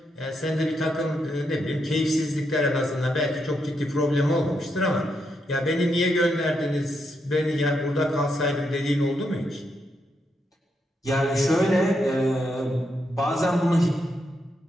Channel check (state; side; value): normal; both; correlation 0.81